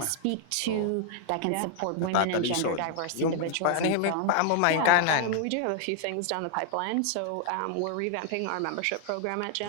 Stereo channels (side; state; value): both; different; correlation 0.00